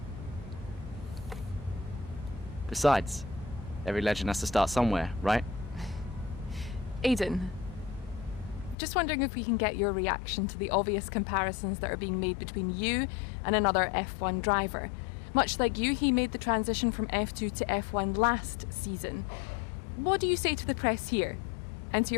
Besides, every legend has to start somewhere, right? Aiden, just wondering if we can get your reaction to the obvious comparisons that are being made between you and another F1 driver. Much like you, he made the transition from F2 to F1 last season. What do you say to the press here, and to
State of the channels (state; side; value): drops out; right; at 8.8 s